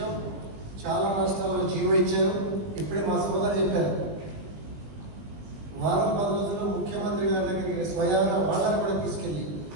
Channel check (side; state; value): left; late; 20 ms